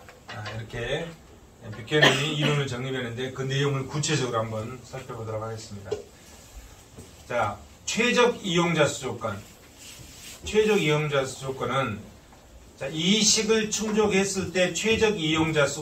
이렇게 뷰캐넌이 이론을 정립했는데 그 내용을 구체적으로 한번 살펴보도록 하겠습니다. 자, 최적 이용자 수 조건. 최적 이용자 수 조건은, 자, 이 식을 충족했을 때 최적 이용자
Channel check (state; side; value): identical; both; correlation 1.00